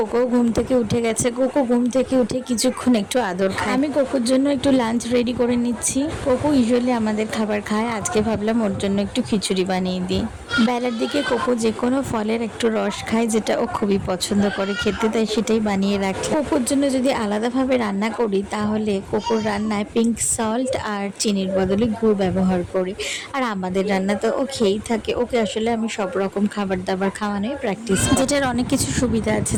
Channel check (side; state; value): both; identical; correlation 1.00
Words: ঘুম থেকে উঠে গেছে। কোকো ঘুম থেকে উঠে কিছুক্ষণ একটু আদর খায়। আমি কোকোর জন্য একটু লাঞ্চ রেডি করে নিচ্ছি। কোকো ইউজুয়ালি আমাদের খাবার খায়, আজকে ভাবলাম ওর জন্য একটু খিচুড়ি বানিয়ে দিই। বেলার দিকে কোকো যে কোনো ফলের একটু রস খায়, যেটা ও খুবই পছন্দ করে খেতে, তাই সেটাই বানিয়ে রাখি। কোকোর জন্য যদি আলাদাভাবে রান্না করি তাহলে কোকোর রান্নায় পিঙ্ক সল্ট আর চিনির বদলে গুড় ব্যবহার করি। আর আমাদের রান্না তো ও খেয়েই থাকে। ওকে আসলে আমি সব রকম খাবার দাবার খাওয়ানোই প্র্যাকটিস, যেটার অনেক কিছু সুবিধা আছে।